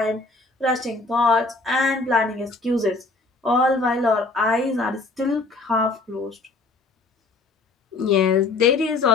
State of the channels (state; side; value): quieter; right; 3.6 dB